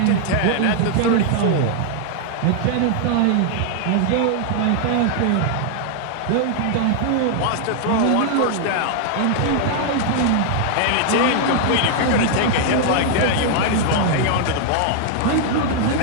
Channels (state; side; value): different; both; correlation 0.00